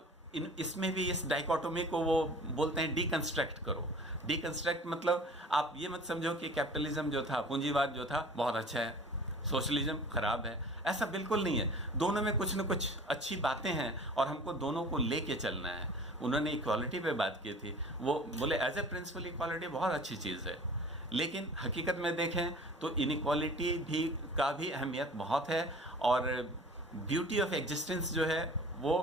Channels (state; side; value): normal; both; correlation 0.44